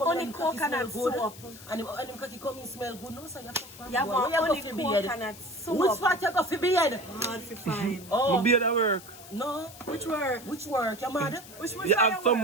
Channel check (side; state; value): left; noise; hiss, 17 dB below the sound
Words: only coconut soap. And him cocky coming smell good, no, so you fuck you have only coconut soap. Which part you got for beard? Hard to find. My beard at work. No. Which work? You mad? Which you have some